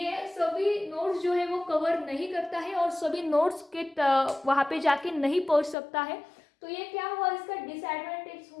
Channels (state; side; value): drops out; right; at 5.8 s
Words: सभी नोड्स जो है वो कवर नहीं करता है और सभी नोड्स के वहां पे जाके नहीं पहुंच सकता है। तो ये क्या हुआ, इसका डिसएडवांटेज